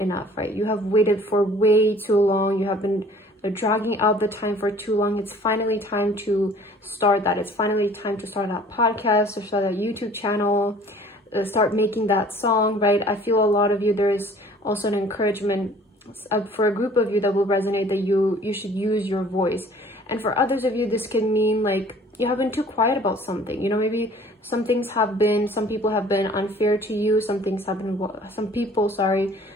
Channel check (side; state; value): both; normal; correlation 0.52